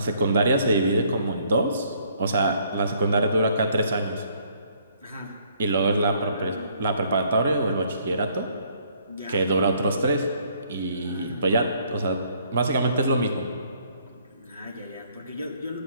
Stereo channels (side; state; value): both; inverted; correlation -0.64